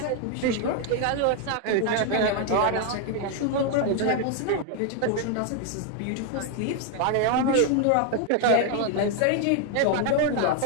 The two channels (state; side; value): different; both; correlation 0.00